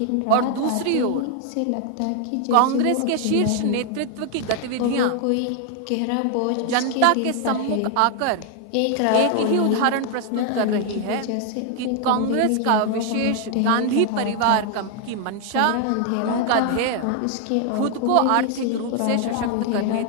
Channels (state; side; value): different; both; correlation 0.00